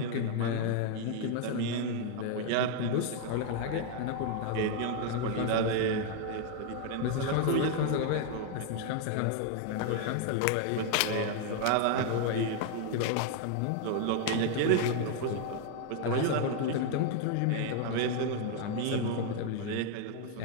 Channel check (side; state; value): both; different; correlation 0.00